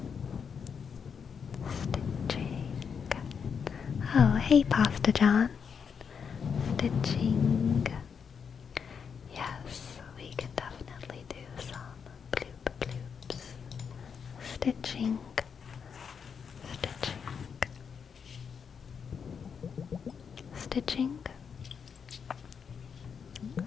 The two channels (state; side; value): quieter; right; 6.6 dB